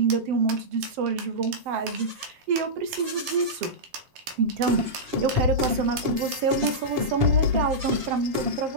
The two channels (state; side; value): late; left; 7.4 ms